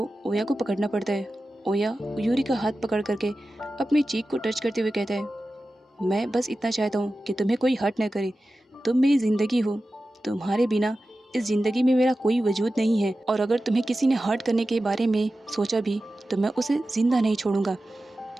ओया को पकड़ना पड़ता है। ओया यूरी का हाथ पकड़ करके अपनी चीख को टच करते हुए कहता है मैं बस इतना चाहता हूँ कि तुम्हें कोई हर्ट न करे, तुम मेरी ज़िंदगी हो, तुम्हारे बिना इस ज़िंदगी में मेरा कोई वजूद नहीं है, और अगर तुम्हें किसी ने हर्ट करने के बारे में सोचा भी तो मैं उसे ज़िंदा नहीं छोड़ूंगा।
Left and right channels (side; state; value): both; normal; correlation 0.94